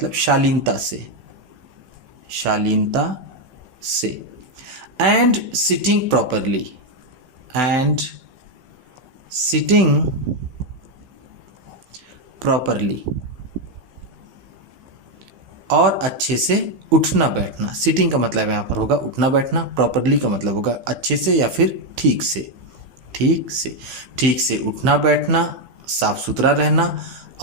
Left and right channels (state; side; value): late; left; 15 ms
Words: शालीनता से, शालीनता से। And sitting properly, and sitting properly, और अच्छे से उठना बैठना। सिटिंग का मतलब यहाँ पर होगा उठना बैठना, प्रॉपरली का मतलब होगा अच्छे से या फिर ठीक से, ठीक से, ठीक से उठना बैठना, साफ सुथरा रहना